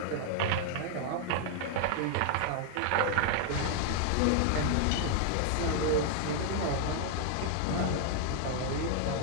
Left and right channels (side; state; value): both; different; correlation 0.00